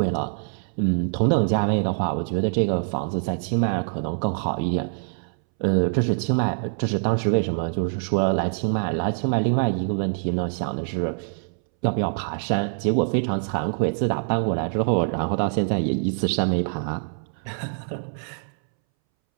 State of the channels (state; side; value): silent; left; 62 dB below the other